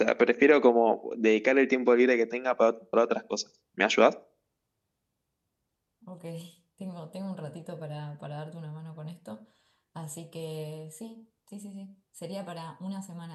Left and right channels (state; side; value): identical; both; correlation 1.00